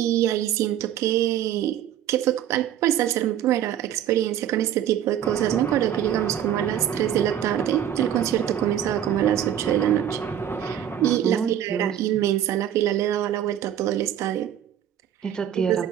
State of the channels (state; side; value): quieter; left; 10.5 dB